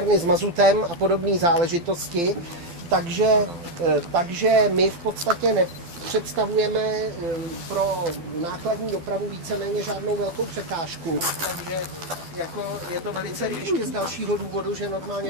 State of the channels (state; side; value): late; left; 12 ms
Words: s mazutem a podobné záležitosti. Takže my v podstatě nepředstavujeme pro nákladní dopravu víceméně žádnou velkou překážku. Takže jako je to velice ještě z dalšího důvodu, že